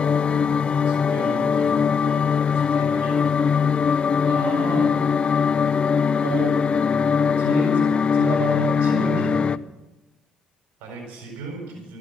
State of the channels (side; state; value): right; quieter; 5.4 dB